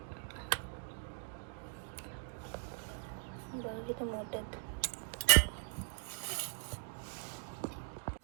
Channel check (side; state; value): left; silent; digital silence